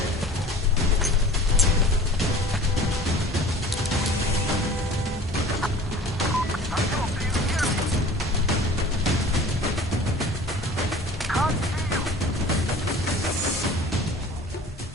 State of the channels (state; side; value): normal; both; correlation 0.43